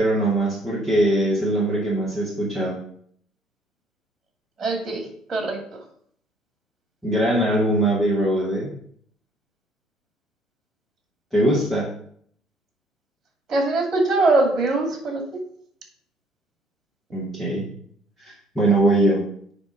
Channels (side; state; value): both; normal; correlation 0.62